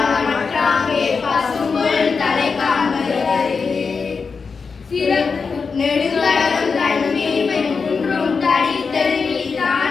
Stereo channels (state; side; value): quieter; right; 5.1 dB